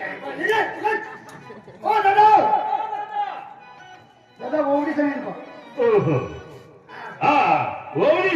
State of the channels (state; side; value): identical; both; correlation 1.00